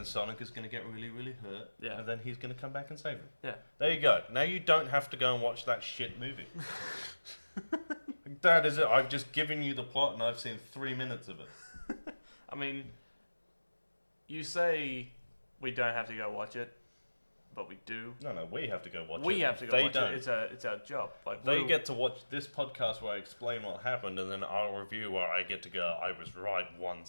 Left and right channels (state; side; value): inverted; both; correlation -1.00